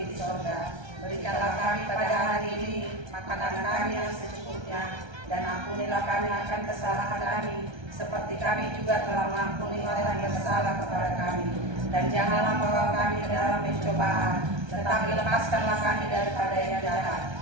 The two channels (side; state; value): left; late; 1.3 ms